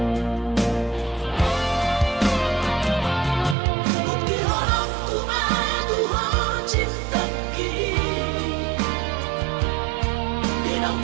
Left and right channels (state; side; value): drops out; left; at 3.6 s